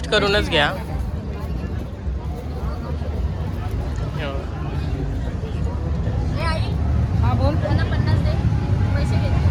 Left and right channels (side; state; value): both; identical; correlation 1.00